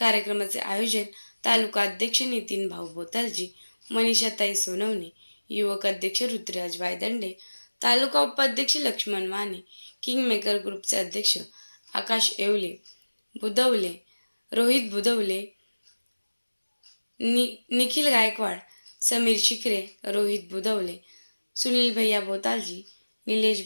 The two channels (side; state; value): both; inverted; correlation -1.00